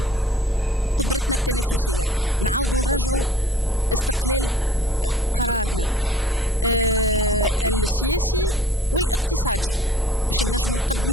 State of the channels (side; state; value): both; normal; correlation 0.52